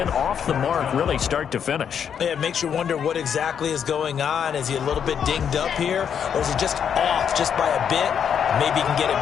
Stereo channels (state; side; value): quieter; right; 8.0 dB